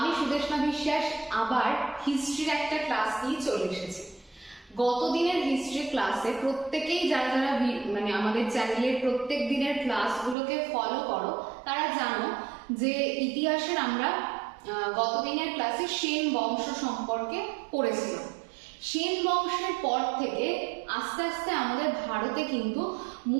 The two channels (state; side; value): drops out; left; at 10.4 s